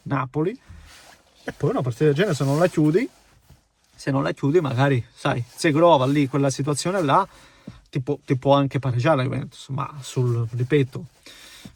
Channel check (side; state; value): both; identical; correlation 1.00